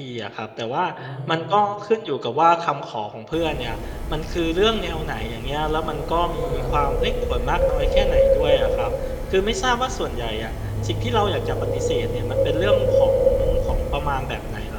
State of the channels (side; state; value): both; identical; correlation 1.00